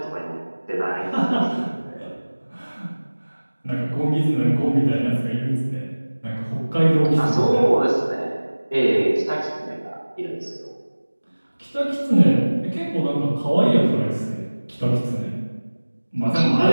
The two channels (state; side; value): inverted; both; correlation -1.00